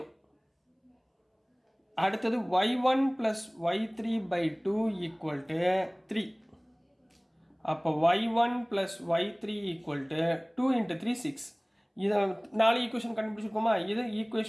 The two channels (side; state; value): both; identical; correlation 1.00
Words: அடுத்தது y1 plus y3 by 2 equal to 3. அப்போ y1 plus y3 equal to 2 into 3, 6. இதை 4 ஈக்குவேஷன் கண்டுபிடிச்சிருக்கோமா? இது